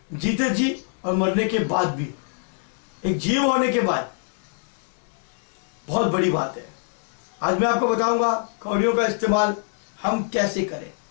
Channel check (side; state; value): right; silent; 62 dB below the other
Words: जीते जी और मरने के बाद भी। एक जीव होने के बाद बहुत बड़ी बात है। आज मैं आपको बताऊंगा कौड़ियों का इस्तेमाल हम कैसे करें